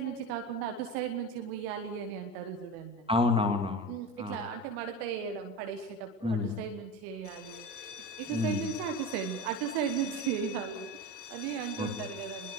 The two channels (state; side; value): normal; both; correlation 0.26